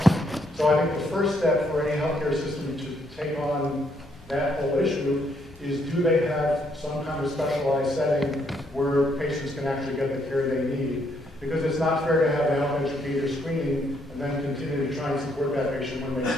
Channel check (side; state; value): both; normal; correlation 0.72